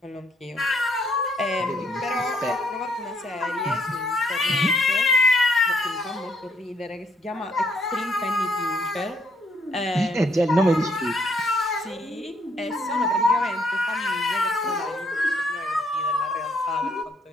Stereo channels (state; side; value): normal; both; correlation 0.69